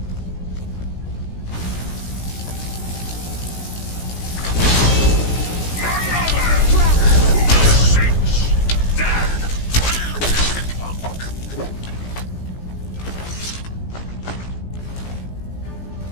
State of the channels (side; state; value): right; late; 17 ms